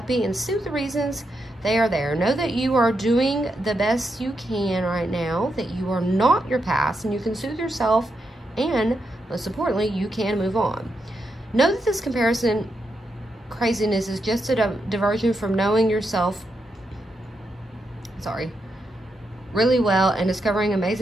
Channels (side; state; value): both; normal; correlation 0.83